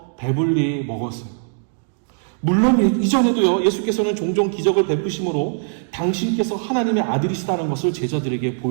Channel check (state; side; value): silent; left; digital silence